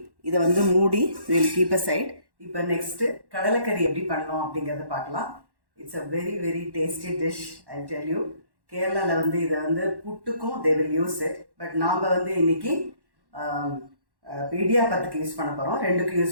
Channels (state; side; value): late; left; 1.1 ms